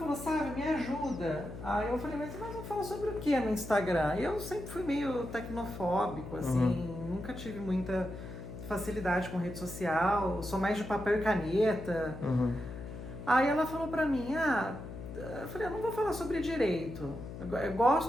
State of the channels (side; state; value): left; noise; hum, 10 dB below the sound